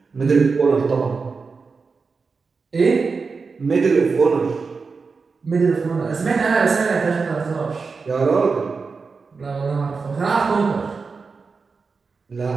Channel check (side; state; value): left; quieter; 4.7 dB